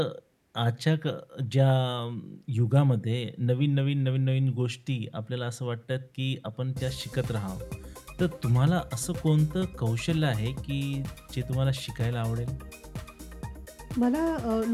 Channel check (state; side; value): identical; both; correlation 1.00